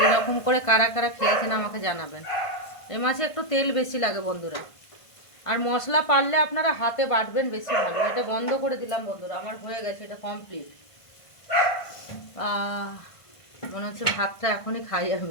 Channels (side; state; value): right; late; 1.5 ms